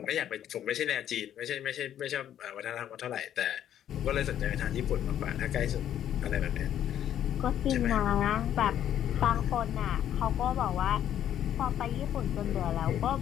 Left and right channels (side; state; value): right; quieter; 10.6 dB